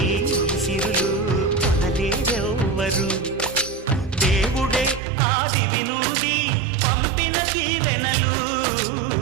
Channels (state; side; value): drops out; left; at 5.0 s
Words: సిరులు కొనలేరెవ్వరు దేవుడే ఆదివి నుండి పంపిన దీవెనలు